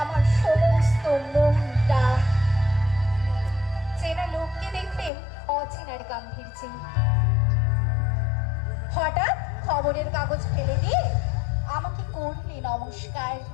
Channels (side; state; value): right; drops out; at 5.1 s